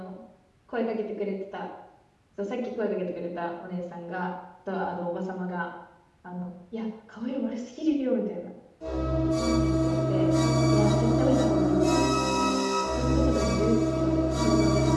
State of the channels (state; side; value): identical; both; correlation 1.00